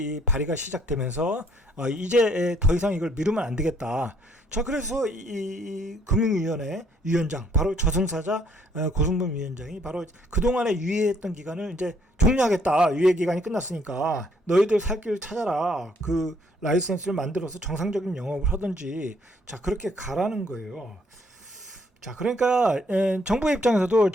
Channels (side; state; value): both; normal; correlation 0.66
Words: 발의가 시작되면서 이제 더 이상 이걸 미루면 안 되겠다. 자, 그래서 이 금융위원회 위원장, 바로 저승사자 고승범 위원장이 바로 그동안에 유예했던 기간을 이제 종료하겠다. 유예 기간이 끝났으니까 너희들 살 길 찾아라. 그 라이센스를 만들어서 정상적인 영업을 하든지, 자, 그렇게 가라는 거예요. 자, 그러니까 정부 입장에서도,